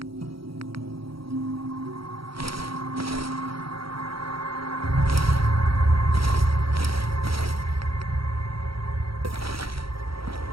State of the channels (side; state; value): left; late; 0.75 ms